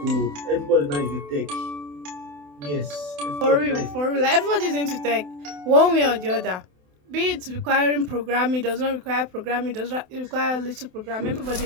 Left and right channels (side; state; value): left; late; 28 ms